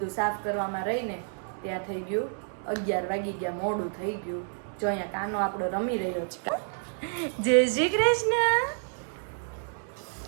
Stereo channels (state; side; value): silent; left; 58 dB below the other